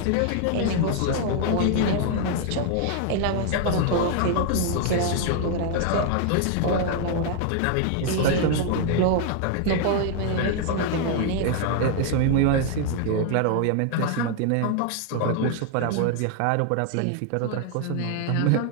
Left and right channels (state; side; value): different; both; correlation 0.00